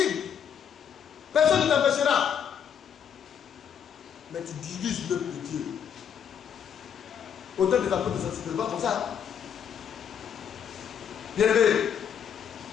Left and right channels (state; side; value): quieter; right; 8.2 dB